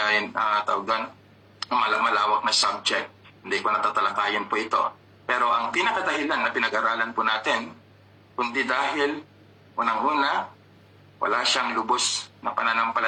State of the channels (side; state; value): both; identical; correlation 1.00